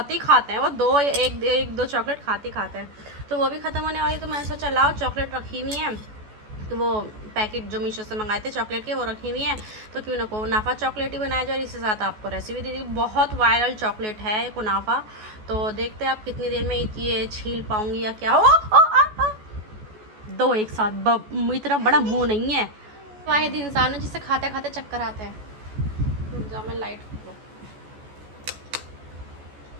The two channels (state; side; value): late; left; 14 ms